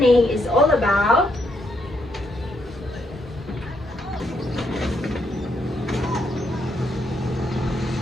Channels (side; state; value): both; normal; correlation 0.76